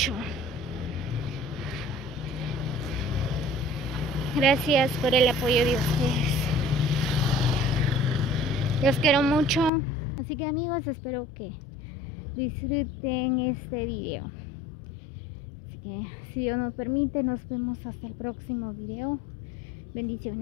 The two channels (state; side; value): drops out; right; at 9.7 s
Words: Gracias por el apoyo de ustedes. Los quiero mucho. Así que amigos, espero que disfruten este video. Así que si Dios nos permite, nos vemos hasta el próximo video.